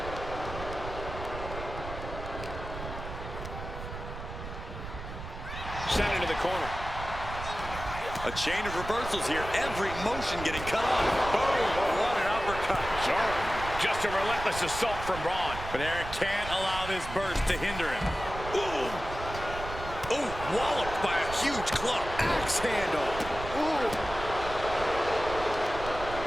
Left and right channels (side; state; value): right; noise; rumble, 9 dB below the sound